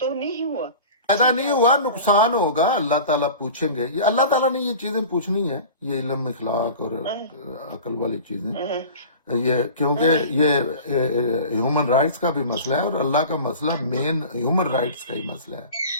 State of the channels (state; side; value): inverted; both; correlation -0.38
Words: نہیں ہوا۔ فائدہ نہیں ہوا، نقصان ہوگا۔ اللہ تعالیٰ پوچھیں گے، یہ اللہ تعالیٰ نے یہ چیزیں پوچھنی ہیں، یہ علم اخلاق اور عقل والی چیزیں، یہ کیونکہ یہ ہیومن رائٹس کا بھی مسئلہ ہے، اور اللہ کا مسئلہ مین ہیومن رائٹس کا ہی مسئلہ ہے۔